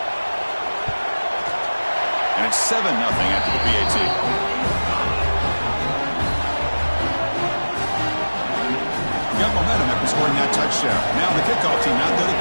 And it's 7-0 after the PAT. Got momentum after scoring that touchdown. Now the kickoff team out there to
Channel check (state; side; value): inverted; both; correlation -1.00